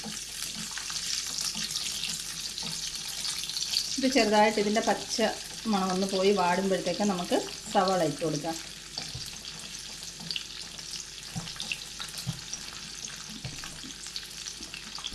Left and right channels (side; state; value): both; identical; correlation 1.00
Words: ഇത് ചെറുതായിട്ട് ഇതിൻ്റെ പച്ച മണമൊന്ന് പോയി വാടുമ്പോഴത്തേക്ക് നമുക്ക് സവാള ഇട്ട് കൊടുക്കാം.